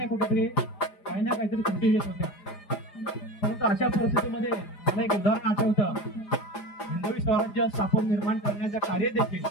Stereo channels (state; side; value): late; right; 4.9 ms